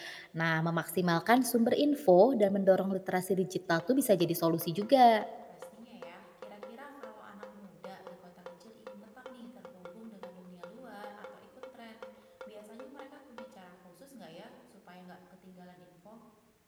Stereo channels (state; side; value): identical; both; correlation 1.00